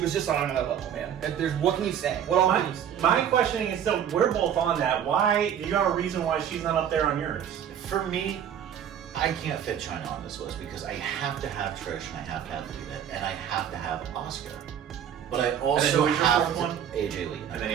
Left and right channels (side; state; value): left; quieter; 9.1 dB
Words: just on another level, man. What can you say? What all can you say? My questioning is still, we're both on that. Why? You got a reason why she's not up there on yours? For me, I can't fit China on this list because I have to have Trish and I have to have Lita and I have to have Asuka. But I also who is your have fourth one? AJ Lee. And then I